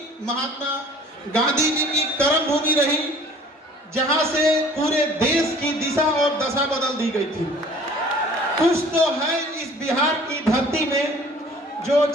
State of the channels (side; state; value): both; normal; correlation 0.50